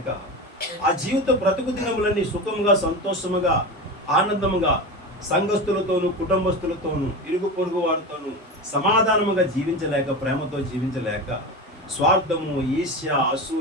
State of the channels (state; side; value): normal; both; correlation 0.24